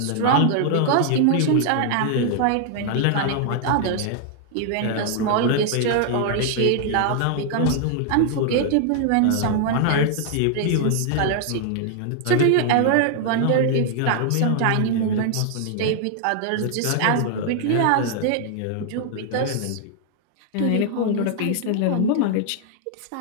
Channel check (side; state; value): both; different; correlation 0.00